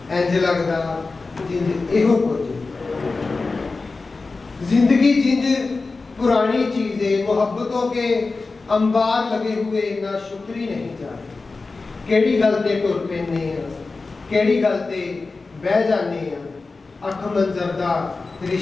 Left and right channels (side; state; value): right; quieter; 3.9 dB